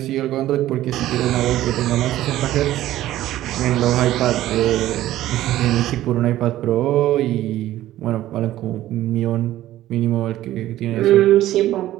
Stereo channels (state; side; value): quieter; left; 14.2 dB